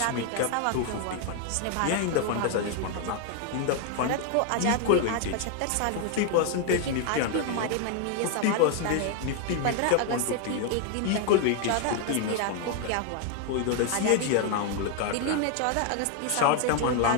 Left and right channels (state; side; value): different; both; correlation 0.00